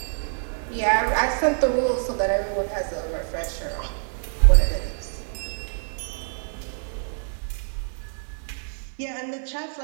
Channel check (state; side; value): silent; left; digital silence